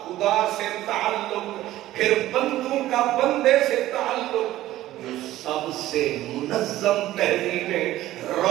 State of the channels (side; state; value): left; quieter; 14.9 dB